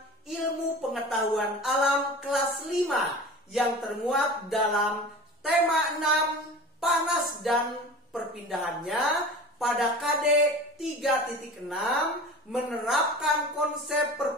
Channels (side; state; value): both; normal; correlation 0.37